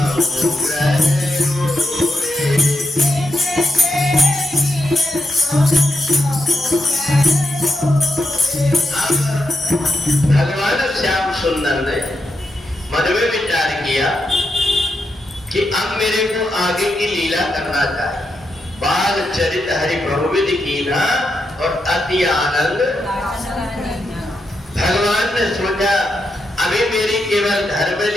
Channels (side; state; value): both; normal; correlation 0.85